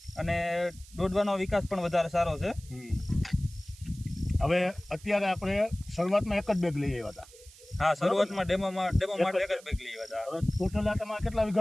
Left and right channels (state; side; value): noise; right; hiss, 22 dB below the sound